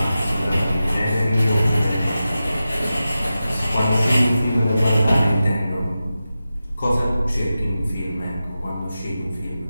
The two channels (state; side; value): inverted; both; correlation -0.93